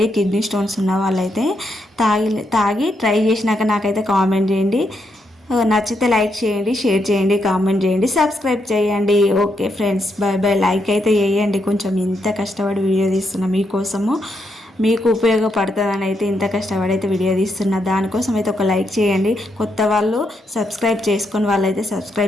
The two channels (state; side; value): normal; both; correlation 0.80